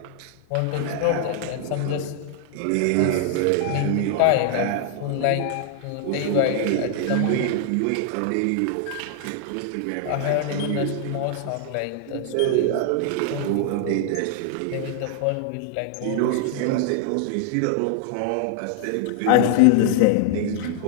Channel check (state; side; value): different; both; correlation -0.01